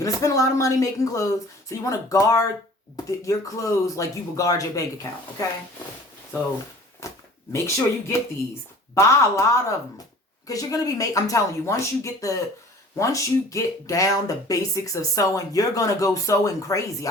to spend a lot of money making clothes, so you want to guard your clothes like you would guard your bank account, okay? So make sure you get these. Buy a lot of them, because you're going to be I'm telling you, once you get down the basics of sewing, you're going to go sewing crazy.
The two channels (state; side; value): normal; both; correlation 0.47